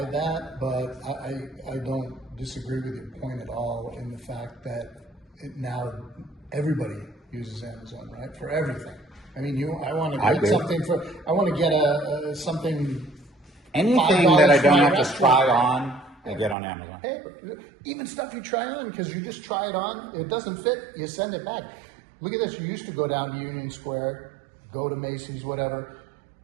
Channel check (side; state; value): left; drops out; at 16.6 s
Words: that, but I don't disagree with your point at all in the fact that now everybody uses Amazon, right? For everything. I mean, I want to get something I want to get something. Anything that I don't have to try on, I get on Amazon. Hey, even stuff you try on, because you just try it on, it doesn't fit, you send it back. Look at this, you used to go down to Union Square, go to Macy's, whatever,